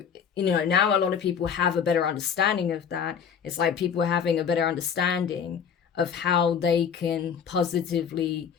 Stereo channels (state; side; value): quieter; right; 7.4 dB